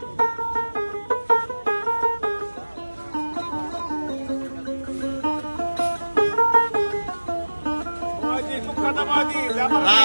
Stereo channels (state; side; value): inverted; both; correlation -1.00